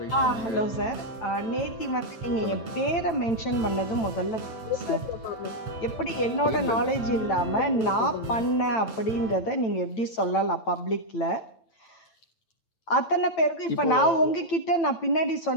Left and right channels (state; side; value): late; right; 9.0 ms